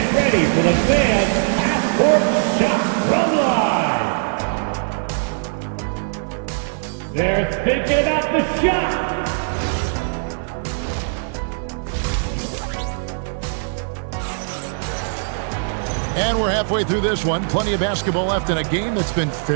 ready for the fan half-court shot from live. They're thinking about the shot. And we're halfway through this one. Plenty of basketball left in a game that's been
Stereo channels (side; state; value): left; silent; 56 dB below the other